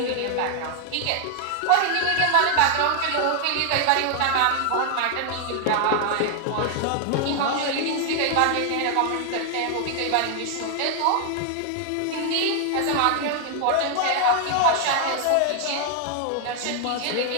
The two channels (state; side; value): different; both; correlation 0.00